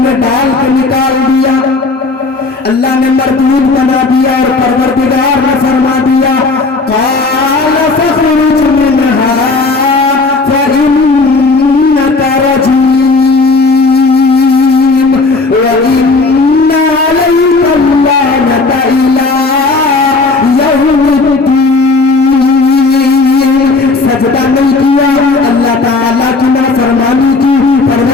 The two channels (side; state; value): right; quieter; 3.7 dB